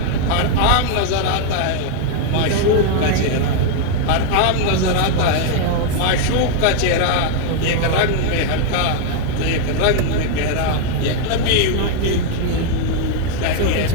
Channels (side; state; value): both; different; correlation 0.00